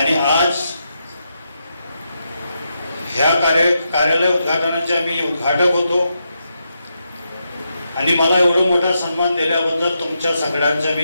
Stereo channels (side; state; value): both; inverted; correlation -0.83